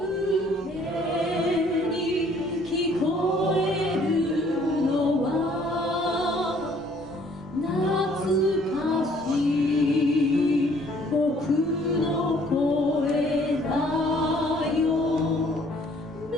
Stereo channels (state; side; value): normal; both; correlation 0.60